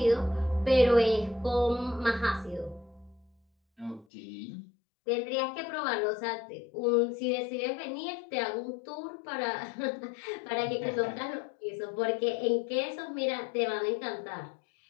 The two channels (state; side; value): drops out; right; at 4.0 s